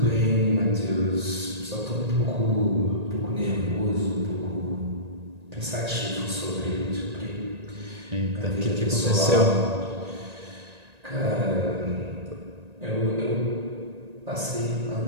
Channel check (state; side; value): late; left; 1.8 ms